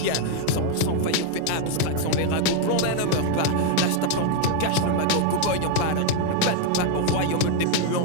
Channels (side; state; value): both; different; correlation 0.00